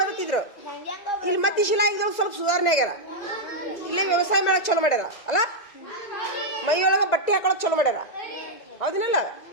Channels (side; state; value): right; late; 2.0 ms